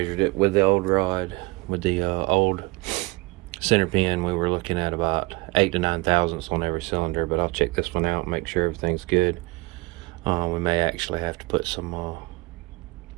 it with the old rod, with the old center pin, we were looking at about 8 to 9 thousandths on every cylinder, but I'll check this one out and make sure everything's good. We may actually have to put some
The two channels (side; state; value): left; quieter; 24.2 dB